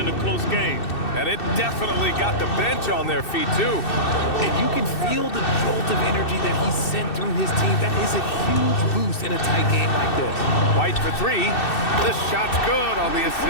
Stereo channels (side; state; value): right; late; 2.6 ms